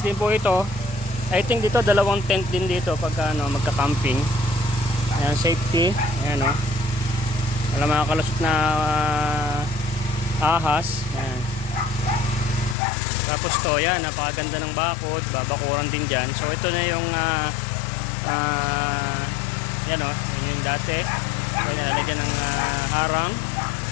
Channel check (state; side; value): drops out; right; at 12.8 s